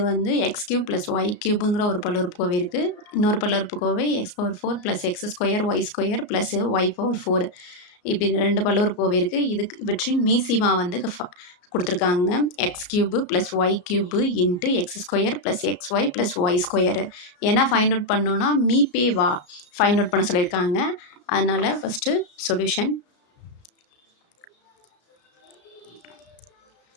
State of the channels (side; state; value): right; late; 34 ms